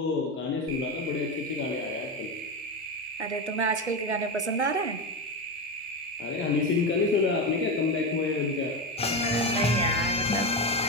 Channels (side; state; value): both; normal; correlation 0.16